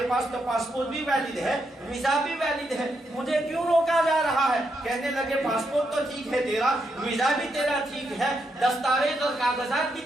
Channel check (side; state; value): both; normal; correlation 0.81